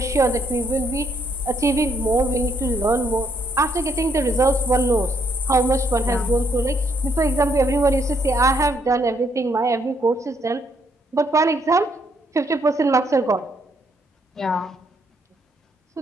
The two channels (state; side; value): normal; both; correlation 0.72